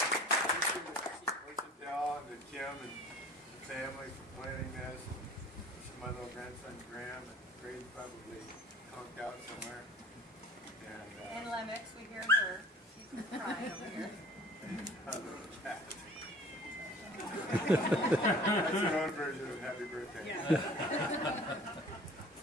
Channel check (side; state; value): both; normal; correlation 0.46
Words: And Kim and the family for planning this. This is my little grandson Graham, and Grady's probably conked out somewhere. And Lemix, we hear her. She's crying over here. A little cat. That's your own version of happy birthday. Yeah.